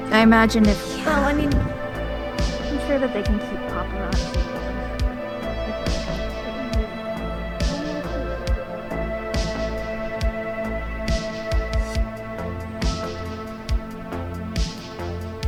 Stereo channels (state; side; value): identical; both; correlation 1.00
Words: I imagine if. Well, I mean, I'm sure that they can keep paparazzi.